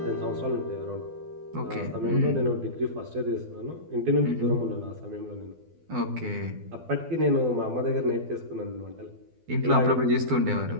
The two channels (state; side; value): late; left; 12 ms